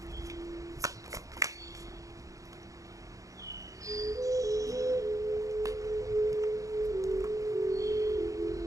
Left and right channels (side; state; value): left; late; 0.16 ms